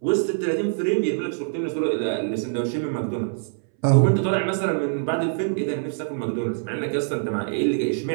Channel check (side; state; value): left; silent; 62 dB below the other